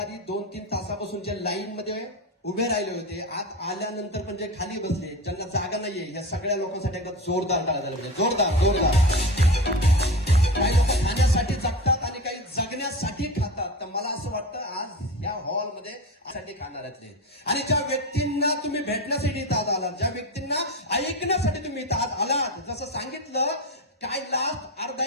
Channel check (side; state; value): both; normal; correlation 0.24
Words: आधी 2-3 तासापासून जे लाईन मध्ये उभे राहिले होते, आत आल्यानंतर पण जे खाली बसले, ज्यांना जागा नाहीये, या सगळ्या लोकांसाठी एकदा जोरदार टाळ्या झाल्या पाहिजे. जोरदार जोरदार. काही लोक खाण्यासाठी जगतात आणि काही जगण्यासाठी खातात. तर मला असं वाटतं आज या हॉलमध्ये साठी खाणाऱ्यातले आणि ज्या व्यक्तींना तुम्ही भेटण्यासाठी इथं आज आलात, ज्या व्यक्तींना ऐकण्यासाठी तुम्ही इथं आज आलात, जसं सांगितलं काय लास्ट